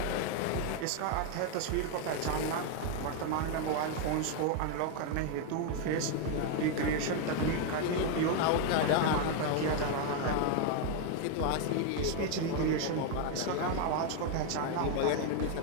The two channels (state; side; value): different; both; correlation 0.01